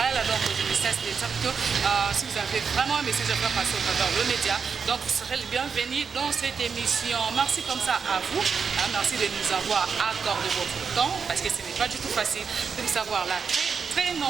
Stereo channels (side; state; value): left; quieter; 5.9 dB